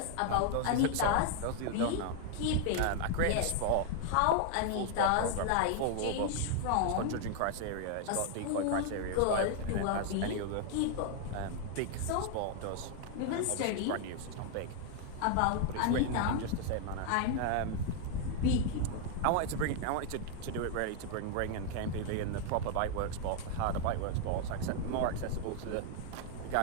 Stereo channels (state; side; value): different; both; correlation 0.00